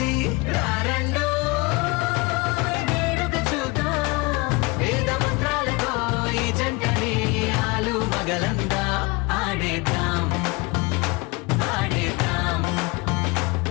రారండో వేడుక చూద్దాం వేద మంత్రాలతో ఈ జంటని ఆలు మగలందా ఆడేద్దాం ఆడేద్దాం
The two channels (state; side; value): quieter; right; 25.4 dB